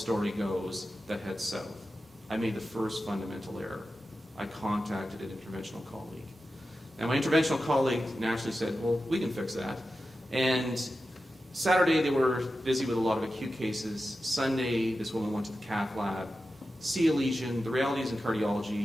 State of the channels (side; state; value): both; normal; correlation 0.92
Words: goes that heads south, I made the first fundamental error. I contacted an interventional colleague. Now, my interventional colleague naturally said, well, we can fix that. And Saturday, they were busy with a lot of acute cases. Sunday, this woman went to the cath lab, see a lesion. The reality is in